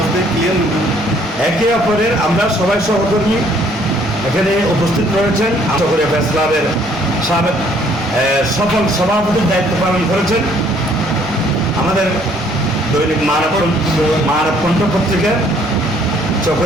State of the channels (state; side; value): normal; both; correlation 0.62